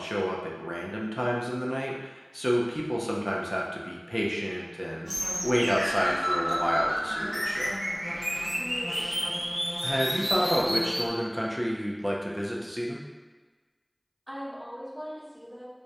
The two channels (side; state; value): both; identical; correlation 1.00